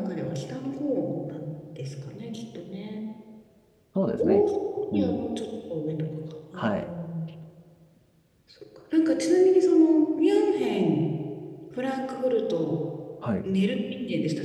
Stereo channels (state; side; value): identical; both; correlation 1.00